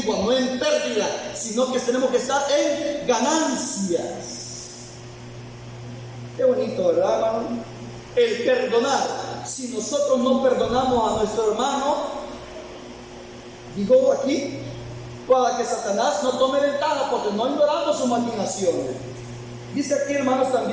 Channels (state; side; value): identical; both; correlation 1.00